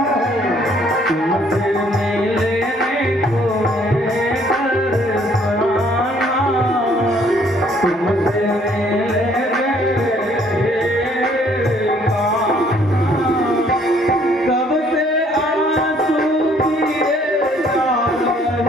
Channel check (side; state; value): both; normal; correlation 0.62